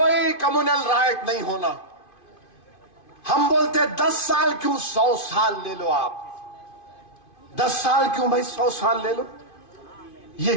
कम्युनल राइट नहीं होना। हम बोलते 10 साल क्यों, 100 साल ले लो आप। 10 साल क्यों भाई, 100 साल ले लो। ये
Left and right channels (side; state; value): right; late; 2.5 ms